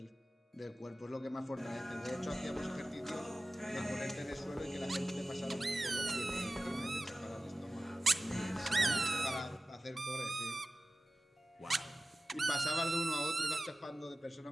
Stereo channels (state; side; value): normal; both; correlation 0.96